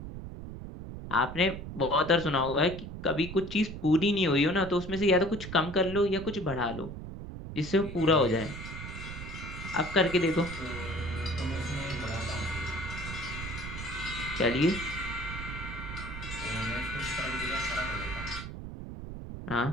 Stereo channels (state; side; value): noise; right; rumble, 9 dB below the sound